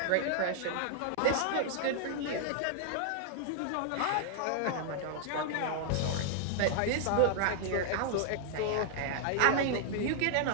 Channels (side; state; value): both; different; correlation -0.01